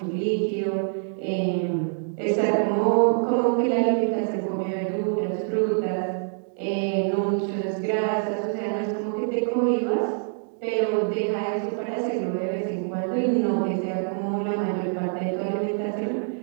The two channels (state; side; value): silent; left; digital silence